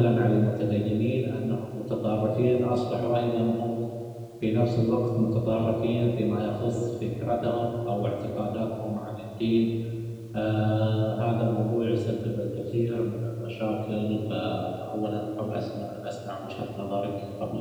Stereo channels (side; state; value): both; identical; correlation 1.00